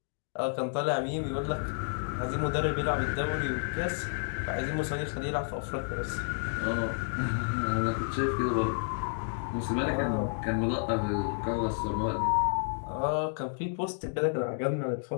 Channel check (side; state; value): right; silent; 57 dB below the other